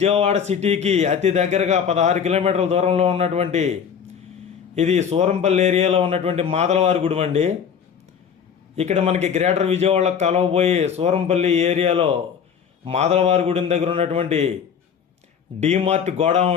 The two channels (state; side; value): quieter; right; 7.3 dB